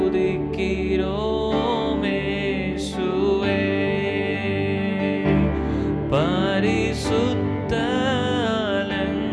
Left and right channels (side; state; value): both; identical; correlation 1.00